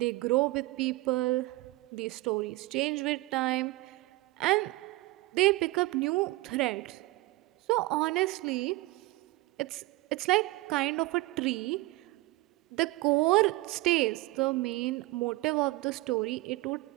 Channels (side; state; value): left; quieter; 20.5 dB